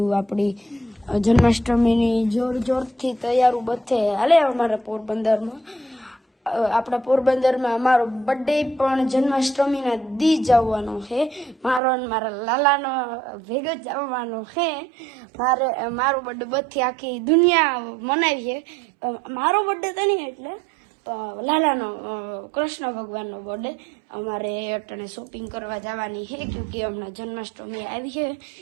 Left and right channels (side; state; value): left; drops out; at 11.8 s